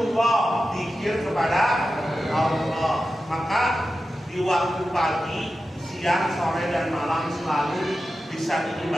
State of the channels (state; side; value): normal; both; correlation 0.92